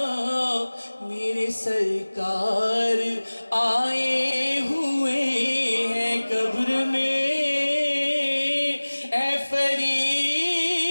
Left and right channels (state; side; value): inverted; both; correlation -1.00